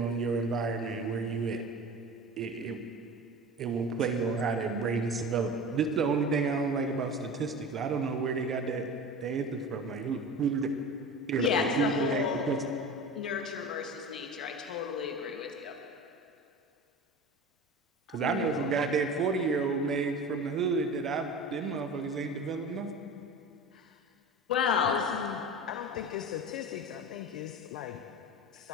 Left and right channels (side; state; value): both; normal; correlation 0.33